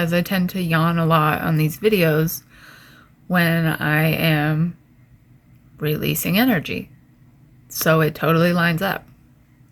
I tend to yawn a lot on these videos when I am releasing energy. So it totally lines up.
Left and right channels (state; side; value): identical; both; correlation 1.00